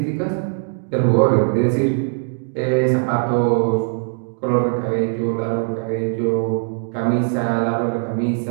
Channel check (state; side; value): silent; left; digital silence